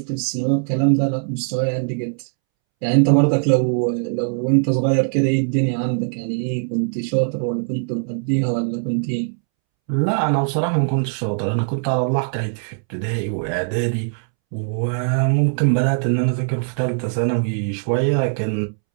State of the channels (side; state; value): left; silent; 65 dB below the other